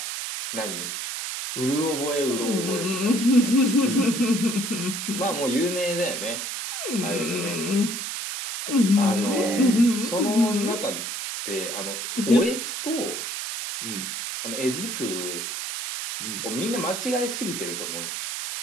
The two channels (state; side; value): noise; right; hiss, 4 dB below the sound